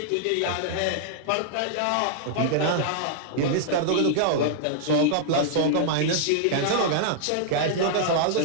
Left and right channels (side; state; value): both; different; correlation -0.01